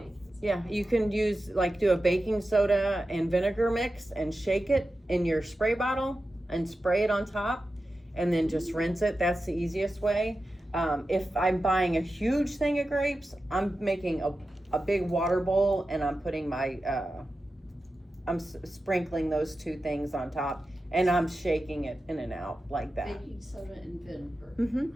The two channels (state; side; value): normal; both; correlation 0.92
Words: Yeah, you can use do a baking soda and vinegar mix and shake it in your spray bottle and spray it on top and then just rinse it. That's the easiest way. If I'm buying a huge thing of grapes, I'm making a big water bowl and I'm putting I'm sprinkling those two things on top and I'm shaking it in and out like that. Baking soda and vinegar.